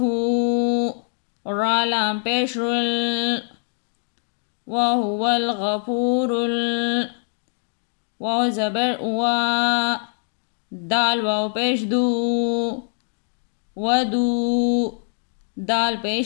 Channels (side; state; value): right; silent; digital silence